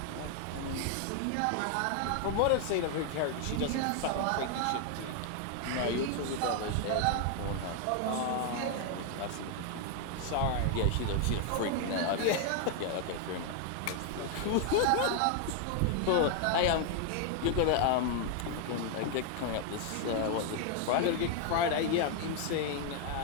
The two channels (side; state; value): both; different; correlation 0.00